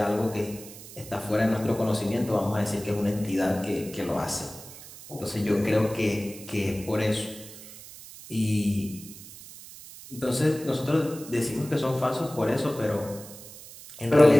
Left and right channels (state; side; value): noise; right; hiss, 16 dB below the sound